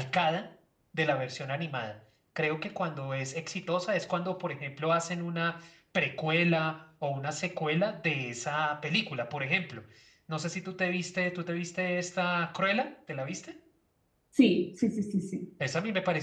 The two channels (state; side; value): identical; both; correlation 1.00